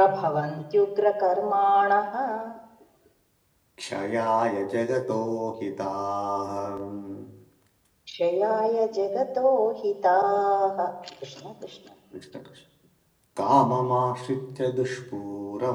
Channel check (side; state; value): both; identical; correlation 1.00